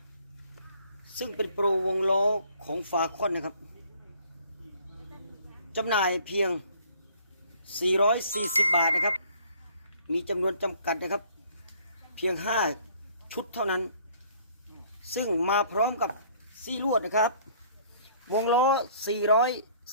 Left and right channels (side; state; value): both; inverted; correlation -0.57